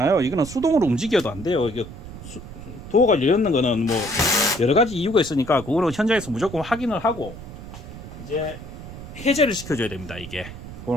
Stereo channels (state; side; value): noise; right; rumble, 13 dB below the sound